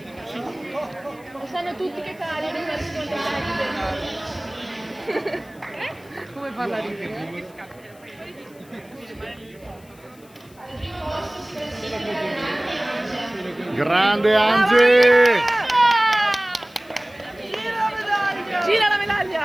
Lo sanno tutti che cali non come parla ridere? Grande Angie! Gira la medaglia! Gira la medaglia!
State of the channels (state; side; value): noise; left; hiss, 27 dB below the sound